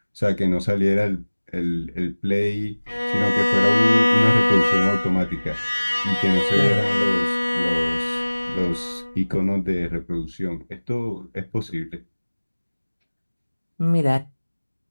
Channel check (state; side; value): inverted; both; correlation -1.00